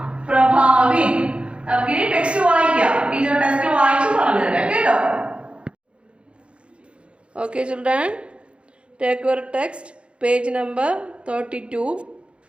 प्रभावित. നമുക്ക് ഇനി ടെക്സ്റ്റ് വായിക്കാം. ടീച്ചർ ടെക്സ്റ്റ് വായിച്ചു പറഞ്ഞു തരാം കേട്ടോ. Okay children, take your text, page number 32.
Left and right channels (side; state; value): left; late; 0.058 ms